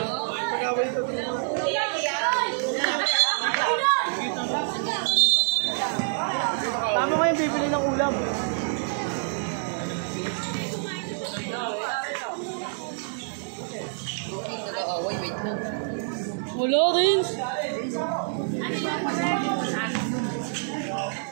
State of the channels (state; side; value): silent; left; 60 dB below the other